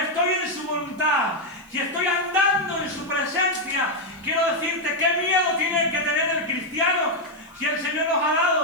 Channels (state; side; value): noise; right; hiss, 30 dB below the sound